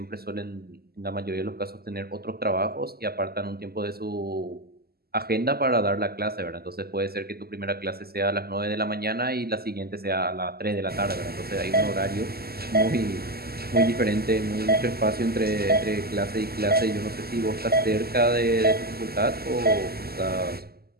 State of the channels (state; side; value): late; left; 0.45 ms